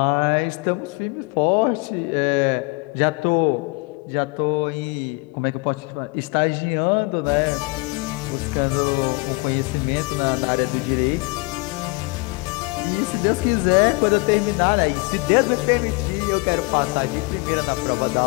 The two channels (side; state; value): right; quieter; 27.2 dB